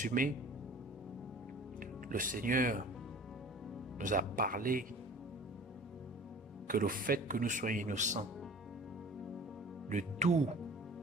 le Seigneur nous a parlé que le fait que nous soyons innocents de tout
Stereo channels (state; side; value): normal; both; correlation 0.44